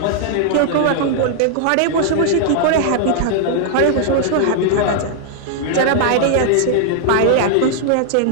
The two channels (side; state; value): both; different; correlation 0.00